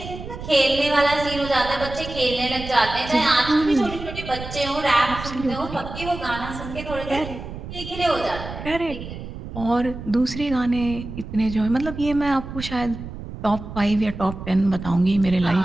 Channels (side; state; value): right; noise; rumble, 10 dB below the sound